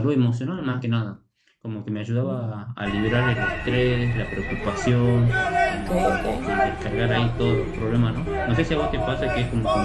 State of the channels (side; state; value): both; identical; correlation 1.00